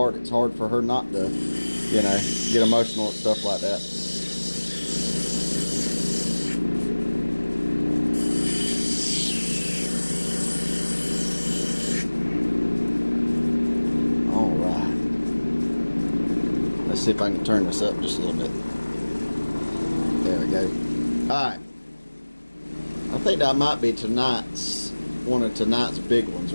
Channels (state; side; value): inverted; both; correlation -1.00